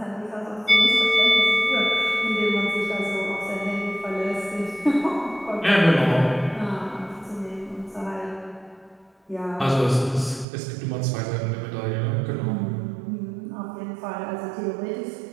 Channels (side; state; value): left; drops out; at 10.5 s